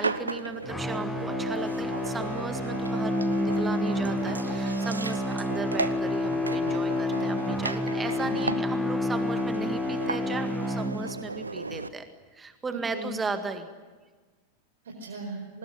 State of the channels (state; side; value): normal; both; correlation 0.53